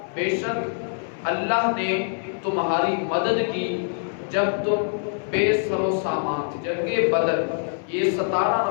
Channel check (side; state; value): right; silent; 59 dB below the other